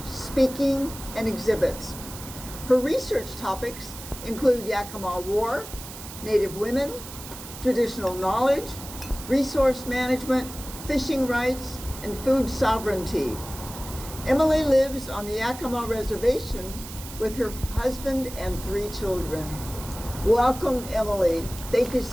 speaking, and exhibits. Her research topics include Yakama War, Native women, traditional knowledge, resource management, fishing rights, and food sovereignty. Emily lives on the Yakama Reservation with her husband and 3 children. Welcome, Emily. Thank you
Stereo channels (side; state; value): right; noise; hiss, 13 dB below the sound